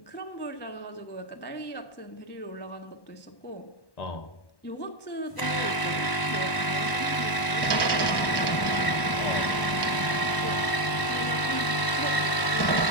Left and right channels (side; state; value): right; late; 1.0 ms